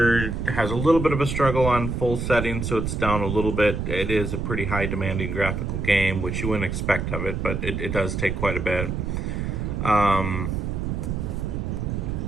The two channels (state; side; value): noise; right; rumble, 2 dB below the sound